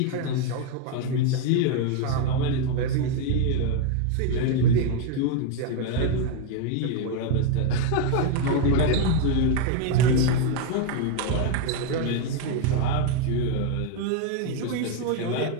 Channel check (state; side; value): different; both; correlation 0.01